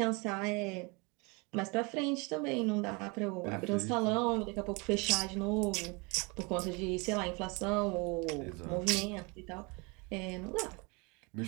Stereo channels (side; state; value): left; quieter; 29.0 dB